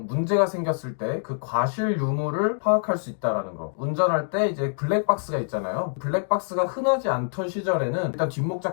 문제가 생겼을 때 그 과실 유무를 파악할 수 있다라는 거. 운전할 때 이제 블랙박스가 있잖아요. 블랙박스가 흔하지 않던 시절에는 일단 뒷목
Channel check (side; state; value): right; silent; digital silence